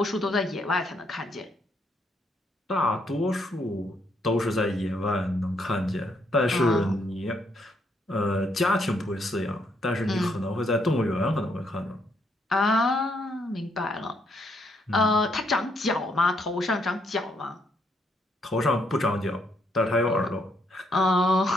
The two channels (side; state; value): both; normal; correlation 0.73